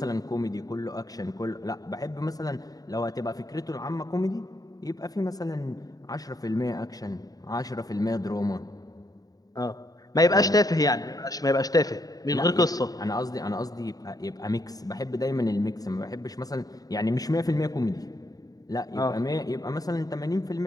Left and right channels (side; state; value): right; late; 0.18 ms